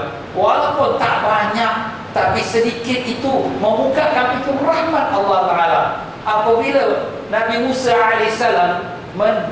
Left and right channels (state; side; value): identical; both; correlation 1.00